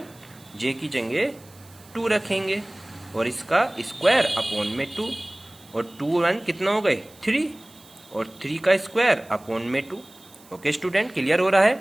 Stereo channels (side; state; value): right; noise; hiss, 25 dB below the sound